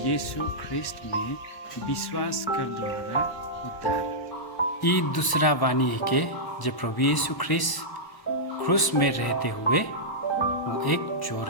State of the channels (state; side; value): late; right; 1.1 ms